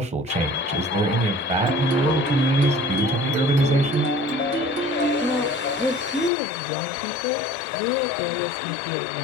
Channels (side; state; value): right; drops out; at 6.3 s